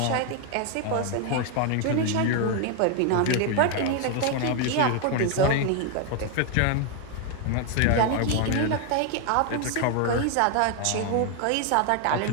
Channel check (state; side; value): different; both; correlation 0.01